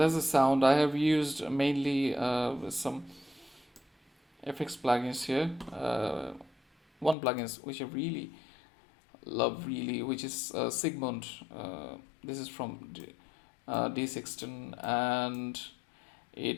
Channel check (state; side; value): drops out; right; at 7.2 s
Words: the sound I have used mainly with some FX plugins here. One plugins which I really love, really, which is Sigmund. This is from D16, and